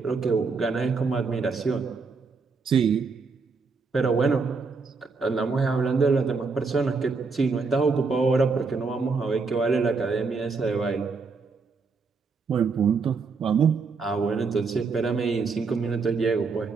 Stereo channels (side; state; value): left; quieter; 4.6 dB